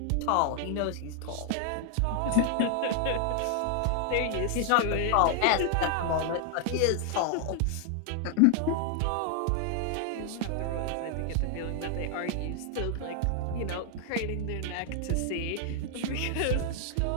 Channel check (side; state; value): both; different; correlation 0.00